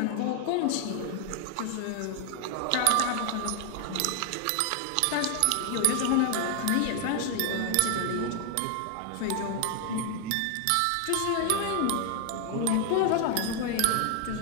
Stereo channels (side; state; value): both; different; correlation 0.00